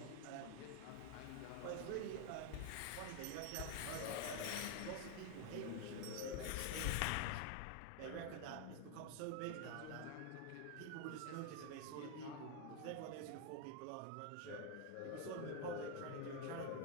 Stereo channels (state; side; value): different; both; correlation 0.01